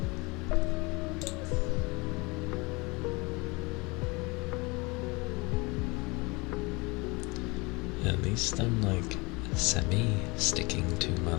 At least I'm like semi-sticking to my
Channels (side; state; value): right; quieter; 25.9 dB